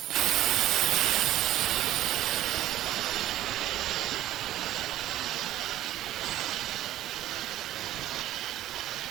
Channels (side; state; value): left; quieter; 13.7 dB